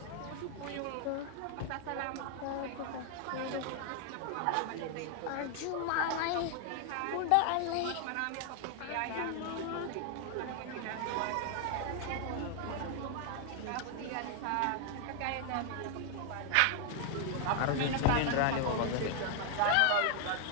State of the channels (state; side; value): different; both; correlation 0.00